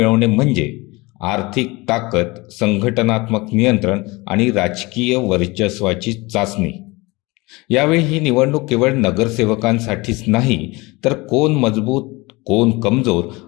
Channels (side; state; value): right; quieter; 23.5 dB